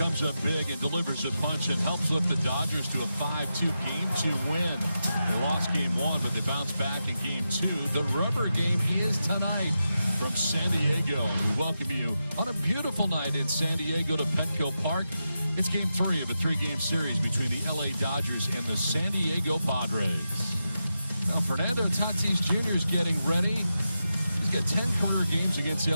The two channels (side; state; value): both; inverted; correlation -0.89